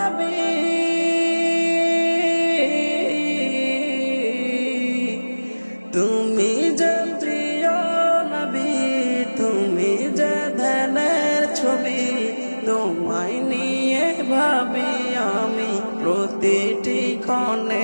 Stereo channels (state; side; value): inverted; both; correlation -1.00